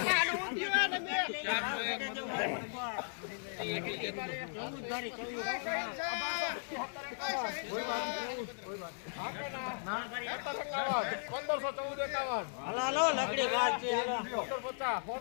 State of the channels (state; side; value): silent; right; digital silence